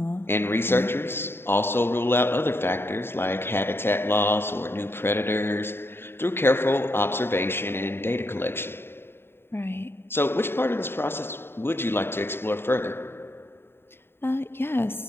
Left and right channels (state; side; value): late; right; 0.11 ms